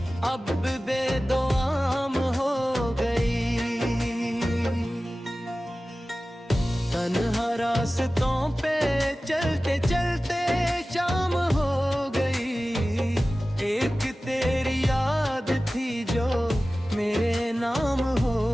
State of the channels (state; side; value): normal; both; correlation 0.96